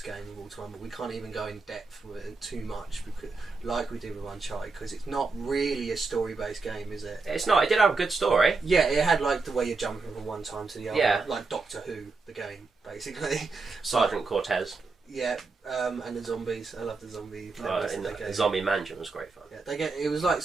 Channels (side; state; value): left; quieter; 4.1 dB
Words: game of all time, but we can't even go in depth with it too much, because, like we did with Uncharted, because it's not really a story-based game, is it? It's not. It did have a good story. Yeah, it had like the way you're jumping from one time to the other, Yeah. like Doctor Who, the game, basically. Sergeant Cortez. Yeah, and the zombies. I love the zombie. In the Zombie Mansion was great fun. Yeah, it was like